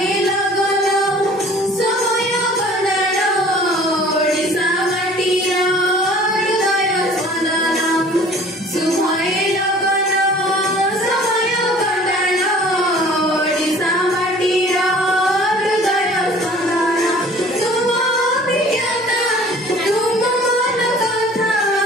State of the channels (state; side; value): normal; both; correlation 0.49